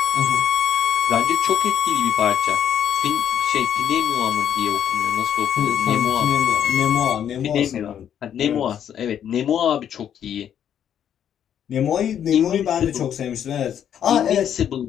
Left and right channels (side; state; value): right; quieter; 9.4 dB